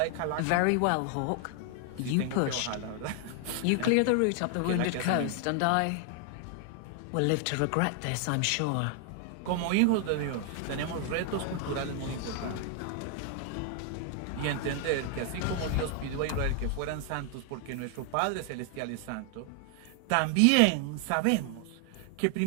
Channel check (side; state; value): both; different; correlation 0.00